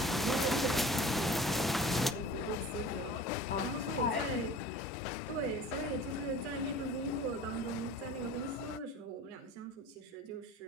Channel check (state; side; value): normal; both; correlation 0.42